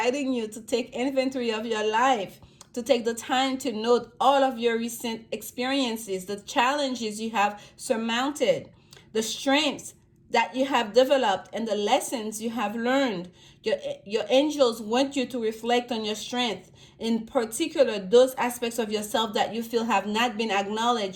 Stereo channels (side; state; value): both; identical; correlation 1.00